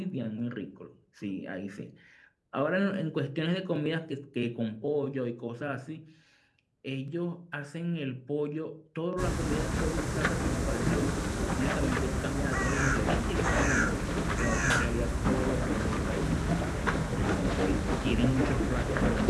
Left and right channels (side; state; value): both; identical; correlation 1.00